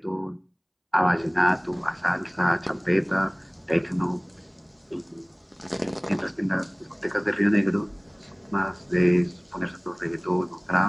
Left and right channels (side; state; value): both; identical; correlation 1.00